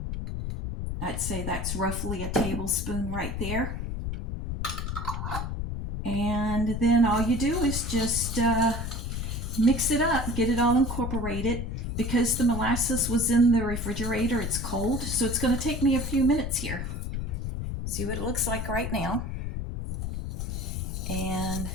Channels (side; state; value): left; noise; rumble, 4 dB below the sound